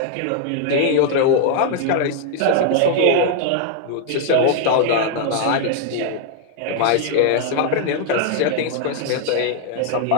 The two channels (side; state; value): both; different; correlation 0.00